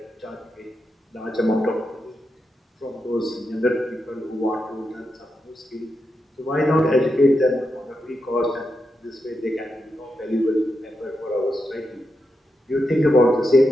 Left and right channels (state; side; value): normal; both; correlation 0.86